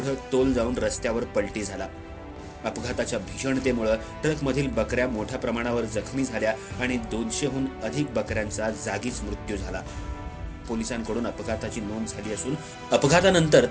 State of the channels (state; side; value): identical; both; correlation 1.00